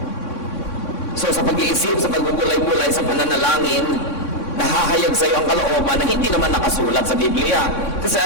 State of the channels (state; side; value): late; right; 3.6 ms